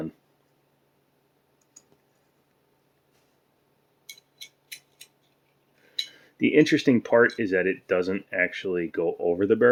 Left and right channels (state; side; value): identical; both; correlation 1.00